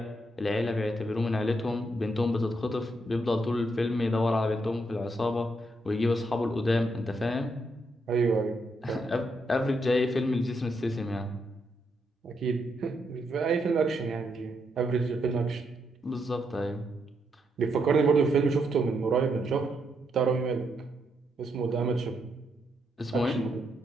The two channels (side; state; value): both; normal; correlation 0.79